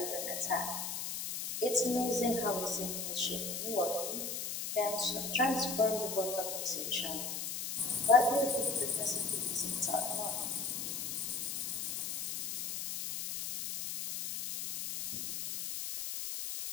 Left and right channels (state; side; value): noise; left; hiss, 4 dB below the sound